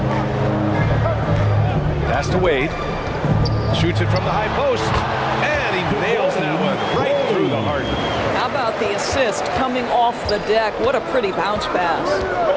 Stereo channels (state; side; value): identical; both; correlation 1.00